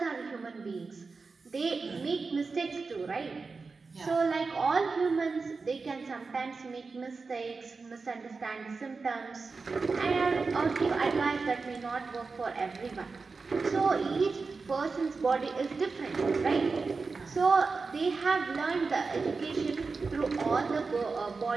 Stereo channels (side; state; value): left; quieter; 4.4 dB